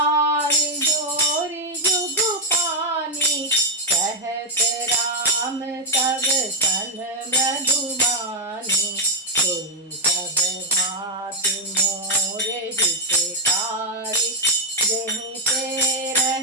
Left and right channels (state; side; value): normal; both; correlation 0.02